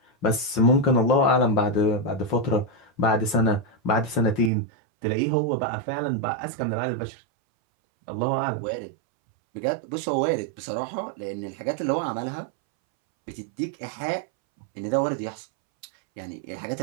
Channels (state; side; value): drops out; left; at 4.5 s